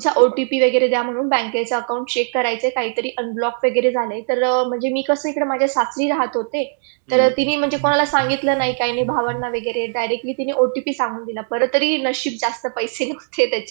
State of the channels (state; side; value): silent; left; 65 dB below the other